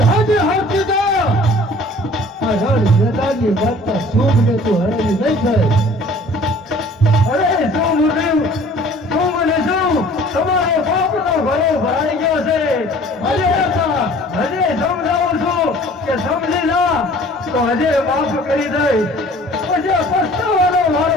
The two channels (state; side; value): normal; both; correlation 0.50